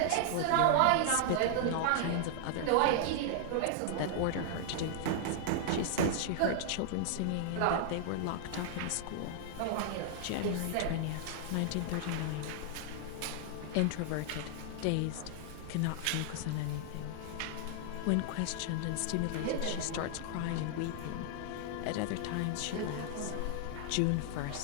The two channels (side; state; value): both; different; correlation -0.01